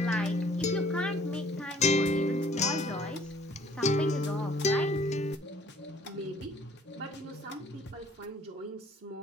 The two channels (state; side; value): normal; both; correlation 0.57